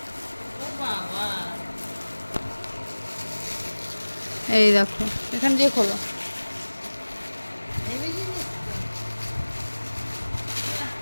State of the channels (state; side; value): inverted; both; correlation -1.00